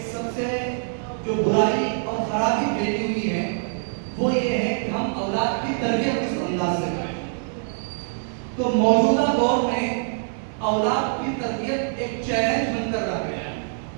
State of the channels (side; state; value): left; silent; 56 dB below the other